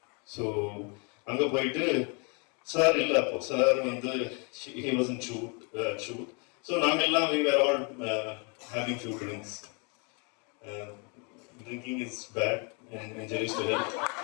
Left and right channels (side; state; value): right; quieter; 34.8 dB